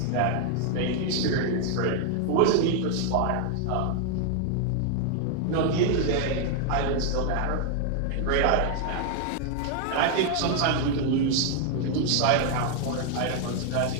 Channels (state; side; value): different; both; correlation 0.00